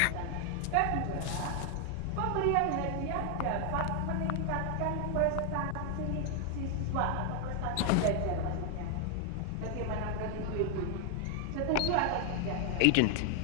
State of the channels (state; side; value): different; both; correlation 0.00